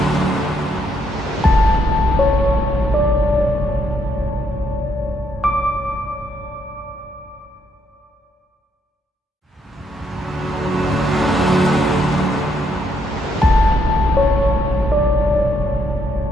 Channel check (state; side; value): normal; both; correlation 0.74